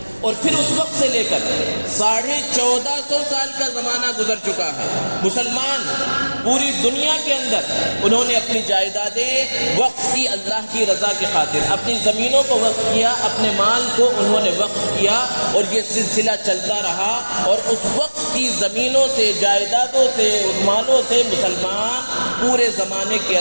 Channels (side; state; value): both; inverted; correlation -1.00